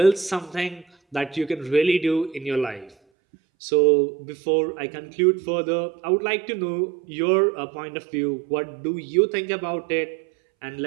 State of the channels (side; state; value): left; drops out; at 3.0 s